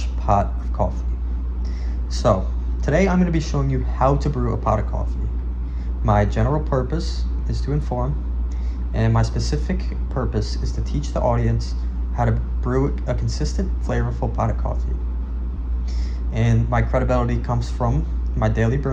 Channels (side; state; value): both; identical; correlation 1.00